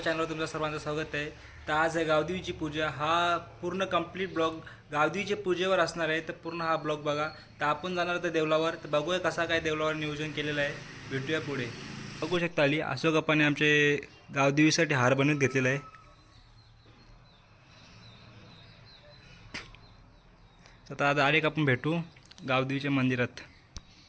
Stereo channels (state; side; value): identical; both; correlation 1.00